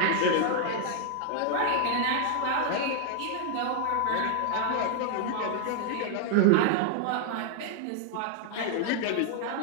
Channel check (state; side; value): different; both; correlation 0.00